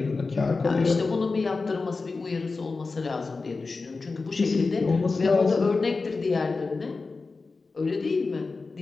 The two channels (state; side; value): quieter; right; 4.0 dB